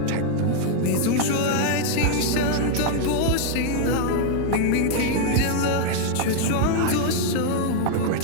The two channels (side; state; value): both; different; correlation 0.00